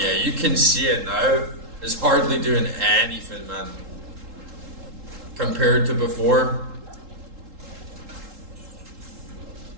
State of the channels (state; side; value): late; left; 3.8 ms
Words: yeah, you can see it now. It's hardly doing anything, man. Compared to before.